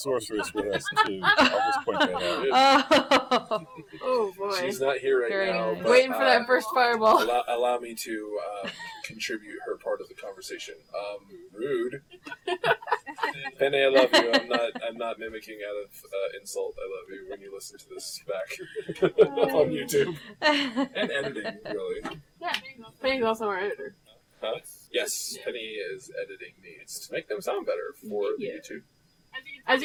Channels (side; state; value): both; identical; correlation 1.00